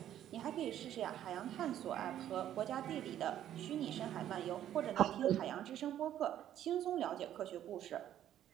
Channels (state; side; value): quieter; left; 11.4 dB